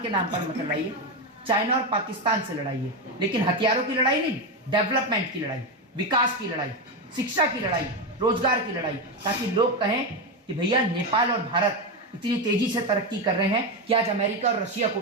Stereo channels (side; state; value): both; normal; correlation 0.12